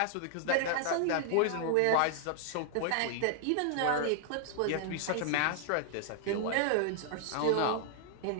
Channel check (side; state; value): both; different; correlation 0.00